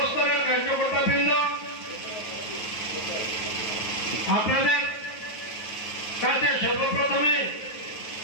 কার্যকর্তাবৃন্দ, আপনাদের কাছে সর্বপ্রথমে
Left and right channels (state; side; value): late; right; 9.3 ms